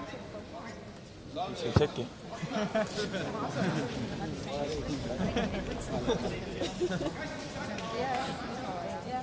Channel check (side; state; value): both; identical; correlation 1.00